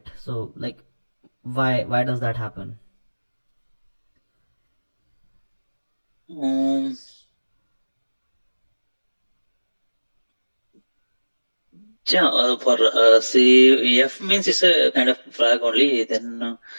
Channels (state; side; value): inverted; both; correlation -1.00